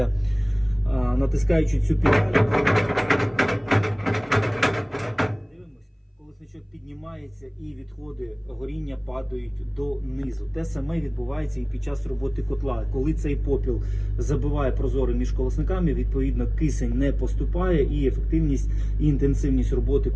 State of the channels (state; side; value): identical; both; correlation 1.00